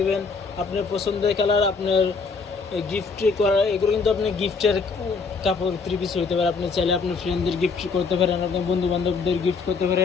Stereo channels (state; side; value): quieter; right; 4.8 dB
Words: আপনার পছন্দের কালার। আপনার গিফট করা, এগুলো কিন্তু আপনি গিফটের কাপড় থ্রি পিস হইতে পারে। আপনি চাইলে আপনার ফ্রেন্ডদের গিফট করতে পারেন, আপনার বন্ধু বান্ধবদের গিফট করতে